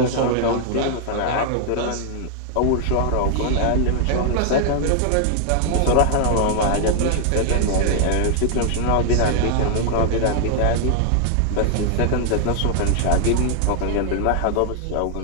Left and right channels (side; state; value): both; different; correlation 0.00